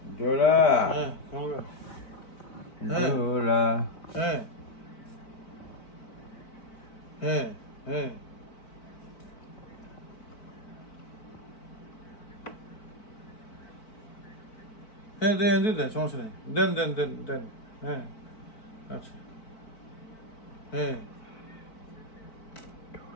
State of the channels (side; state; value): right; late; 4.5 ms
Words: ডোরা, হ্যাঁ ডোরা। হ্যাঁ হ্যাঁ হ্যাঁ হ্যাঁ দেন দেন সমস্যা নেই, দেন দেন দেন দেন। হ্যাঁ আচ্ছা হ্যাঁ